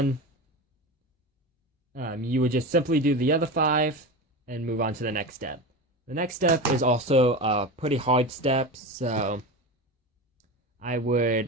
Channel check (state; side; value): normal; both; correlation 0.25